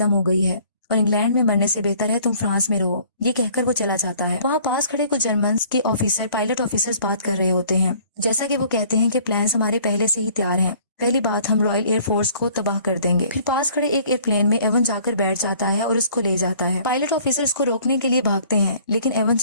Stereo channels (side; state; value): both; inverted; correlation -0.55